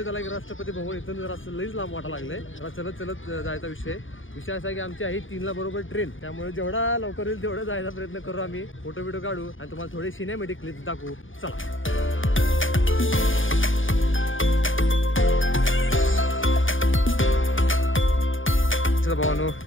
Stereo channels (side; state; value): right; late; 0.57 ms